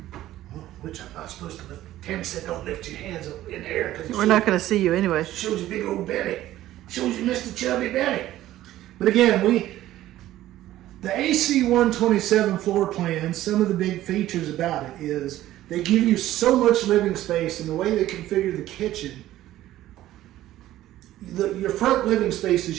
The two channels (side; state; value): left; quieter; 14.3 dB